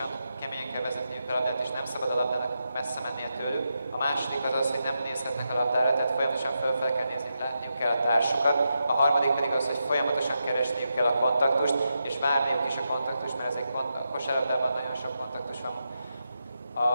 keményen kell vezetniük a labdát, és nem szabad a labdának messze mennie tőlük. A második az az, hogy nem nézhetnek a labdára, tehát folyamatosan fölfele kell nézni, látniuk kell a társukat. A harmadik pedig az, hogy folyamatosan keresniük kell a kontaktust, és várniuk is a kontaktust, mert ezek a kosárlabdában nagyon sok kontaktus van.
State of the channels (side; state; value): both; inverted; correlation -0.86